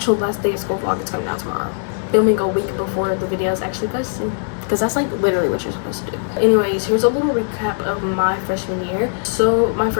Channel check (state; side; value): silent; right; digital silence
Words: last day of school vlog is coming out tomorrow. Filming a week before the video is actually posted, because that's like literally what you're supposed to do. Anyways, here's a little recap of my freshman year. So my